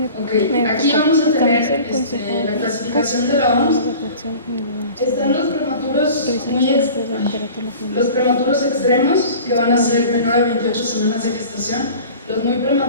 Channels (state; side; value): inverted; both; correlation -0.41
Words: Ok, aquí vamos a tener la clasificación de la OMS. Están los prematuros extremos, que van a ser menor a 28 semanas de gestación, los muy